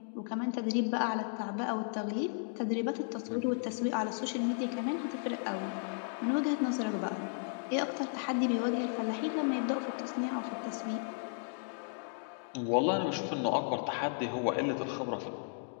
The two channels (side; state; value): right; silent; digital silence